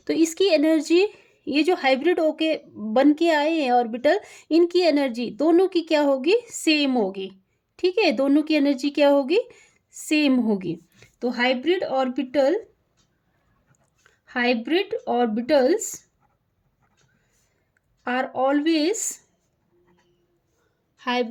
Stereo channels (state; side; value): identical; both; correlation 1.00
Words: तो इसकी एनर्जी, ये जो हाइब्रिड होके बन के आए हैं ऑर्बिटल, इनकी एनर्जी दोनों की क्या होगी, सेम होगी, ठीक है। दोनों की एनर्जी क्या होगी, सेम होगी। तो hybrid orbitals are always